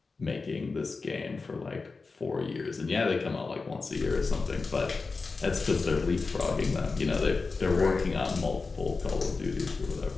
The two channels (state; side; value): quieter; right; 4.2 dB